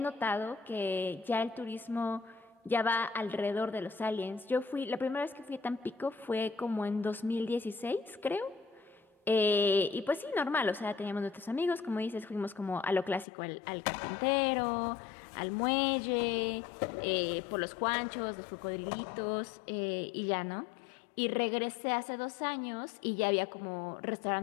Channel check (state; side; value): drops out; right; at 13.2 s